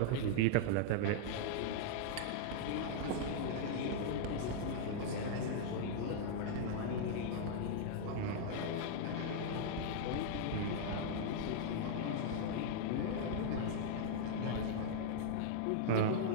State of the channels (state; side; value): different; both; correlation -0.01